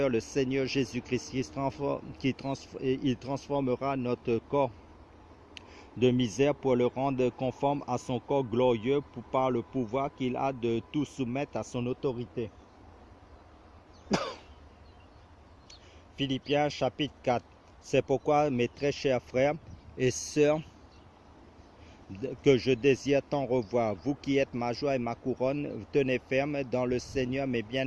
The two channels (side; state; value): both; identical; correlation 1.00